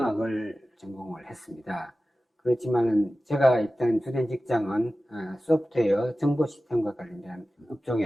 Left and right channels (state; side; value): normal; both; correlation 0.95